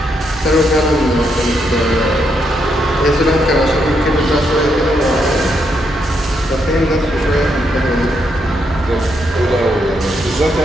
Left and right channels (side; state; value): both; normal; correlation 0.78